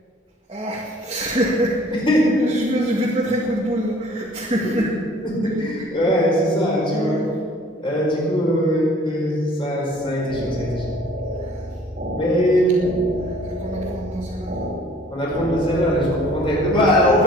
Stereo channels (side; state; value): both; normal; correlation 0.54